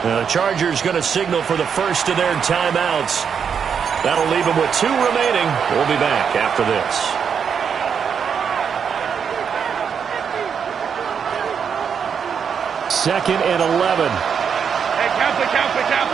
Chargers going to signal for the first of their timeouts. That'll leave them with 2 remaining. We'll be back after this. Second and 11. Hey, count it.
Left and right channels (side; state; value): left; quieter; 7.0 dB